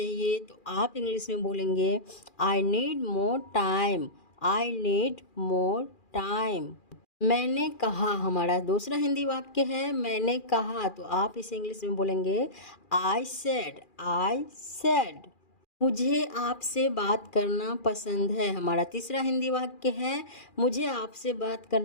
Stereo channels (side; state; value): right; late; 2.4 ms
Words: तो आप इंग्लिश में बोलेंगे I need more time. I need more time. मैंने कहा, हमारा दूसरा हिंदी वाक्य है मैंने कहा, तो आप इसे इंग्लिश में बोलेंगे आई सेड। I said. मुझे आपसे बात करना पसंद है। हमारा तीसरा हिंदी वाक्य है मुझे आपसे बात